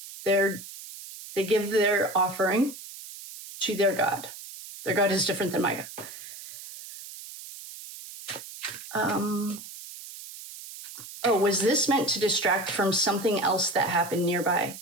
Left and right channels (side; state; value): right; noise; hiss, 14 dB below the sound